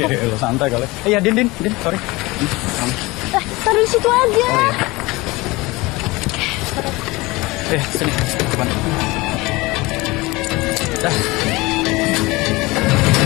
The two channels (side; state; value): right; quieter; 22.2 dB